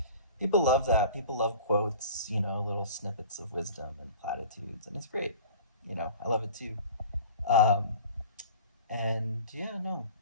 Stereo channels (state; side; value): inverted; both; correlation -0.42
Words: people love that. People love quotes, little snippets of wisdom and platitudes, and it's great. I love it too. Um, and yeah, no,